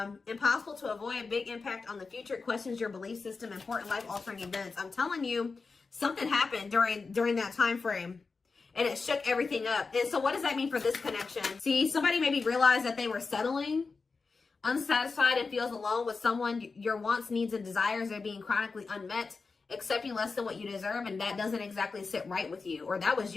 impossible to avoid, big impact on the future, questions your belief system, important life-altering events. I'm telling you, something happened during that time frame, and it shook everything up. And so what does that mean for this connection? See, somebody maybe realized that they were settling, unsatisfied, and feels alone with someone. Your wants, needs, and desires are being chronically unmet, accepting less than what you deserve, and that doesn't exactly sit right with you. Or that was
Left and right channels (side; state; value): right; quieter; 4.4 dB